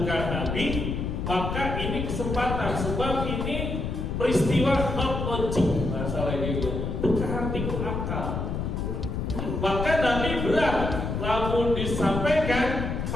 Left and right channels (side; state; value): left; noise; rumble, 3 dB below the sound